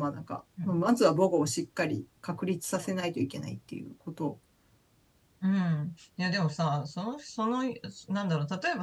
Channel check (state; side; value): identical; both; correlation 1.00